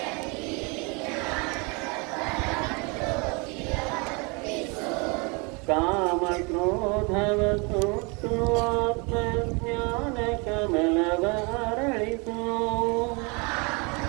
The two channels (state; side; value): quieter; left; 30.7 dB